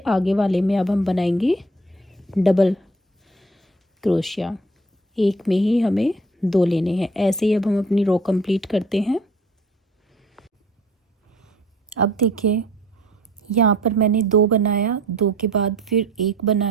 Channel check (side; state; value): both; normal; correlation 0.52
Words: आगे वाले में अब हम बनाएंगे डबल क्रोशिया। एक में ही हमें 2 लेने हैं। ऐसे ही अब हम अपनी रो कंप्लीट करते हैं। अब देखिए, यहाँ पर मैंने 2 बनाया, 2 के बाद फिर 1